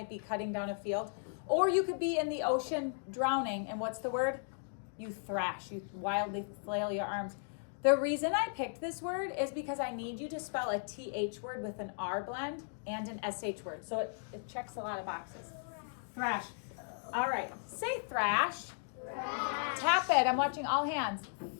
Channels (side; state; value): right; silent; digital silence